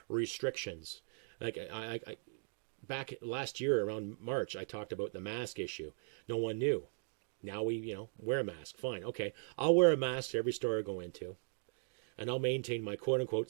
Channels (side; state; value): left; silent; digital silence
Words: restrictions. Like I back last year around March, I talked about the mask issue. No one knew. Now we, wear a mask. Fine. Okay. I'll wear a mask to every store I go into. And I'll maintain my quote-unquote